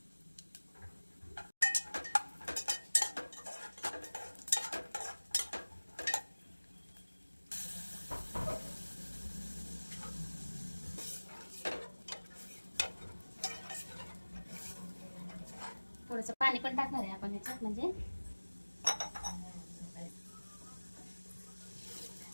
थोडंसं पाणी पण टाकणार आहे आपण ह्याच्यात, म्हणजे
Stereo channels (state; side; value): inverted; both; correlation -1.00